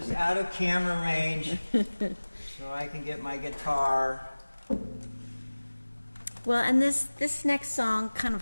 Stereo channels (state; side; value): inverted; both; correlation -1.00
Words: out of camera range, so I can get my guitar. Well, and this next song, kind of